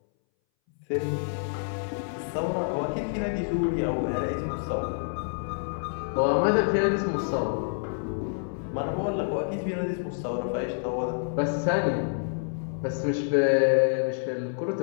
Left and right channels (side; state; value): right; silent; 60 dB below the other